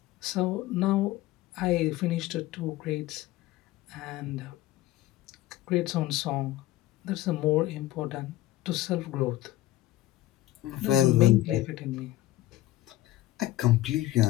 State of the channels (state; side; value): quieter; right; 15.8 dB